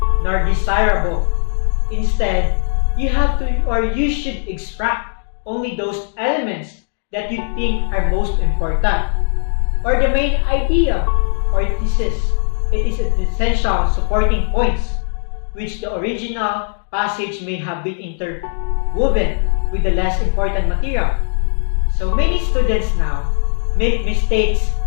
nor desirable. Instead, you have to or you should extract only those elements that you think are most important, or the main idea or thesis. It is an essential supporting points, which the original passage may have been interwoven with the less important material. So many students now make mistakes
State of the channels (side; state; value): right; silent; 64 dB below the other